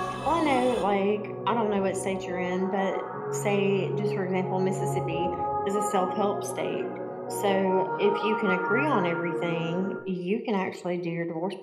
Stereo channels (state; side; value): identical; both; correlation 1.00